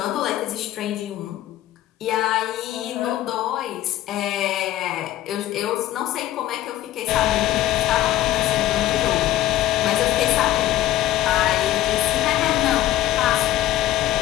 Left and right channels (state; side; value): quieter; right; 14.1 dB